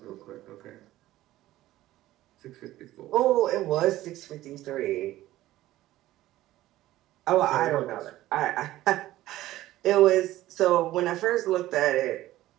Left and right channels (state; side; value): quieter; left; 15.5 dB